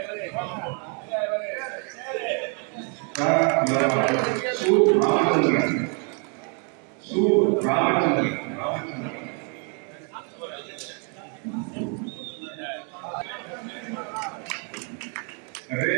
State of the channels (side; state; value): left; quieter; 39.7 dB